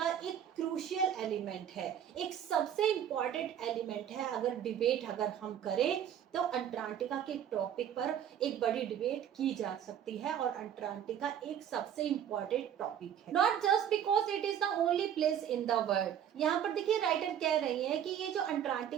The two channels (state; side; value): quieter; left; 9.6 dB